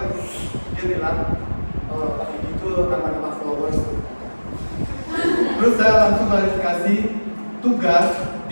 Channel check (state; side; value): inverted; both; correlation -1.00